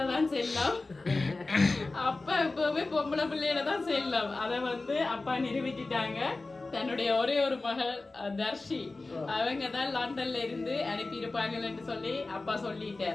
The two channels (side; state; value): right; quieter; 3.3 dB